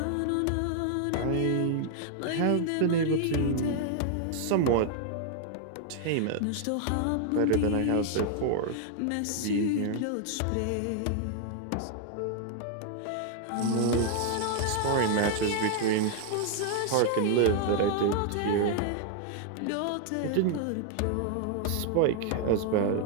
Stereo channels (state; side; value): different; both; correlation 0.00